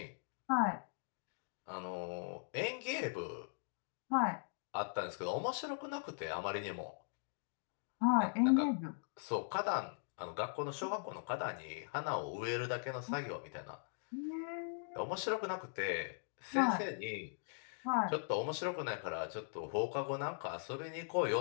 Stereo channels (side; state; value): right; silent; digital silence